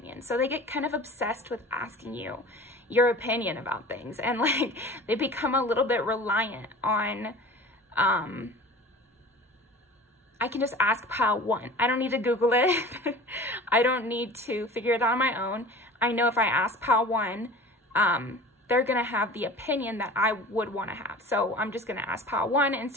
so they get kind of obsessed with asking you your opinion about things, and like they become a little bit reliant on I can just ask pile 1. I don't need to Google it. I don't need to figure it out on my own. I know if I ask pile 1, they're gonna have the opinion that I would want to have, so I'm just gonna ask pile 1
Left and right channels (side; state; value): both; normal; correlation 0.40